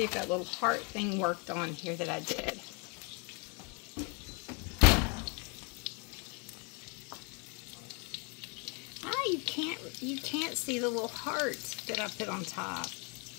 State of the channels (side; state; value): right; quieter; 34.3 dB